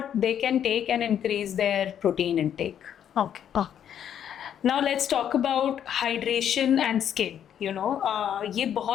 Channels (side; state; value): right; quieter; 9.5 dB